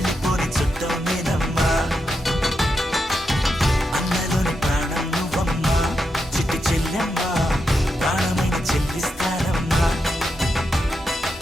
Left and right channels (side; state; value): both; normal; correlation 0.85